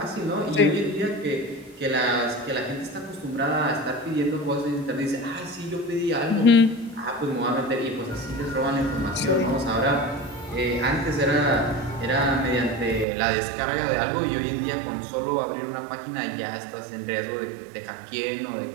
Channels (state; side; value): drops out; left; at 13.1 s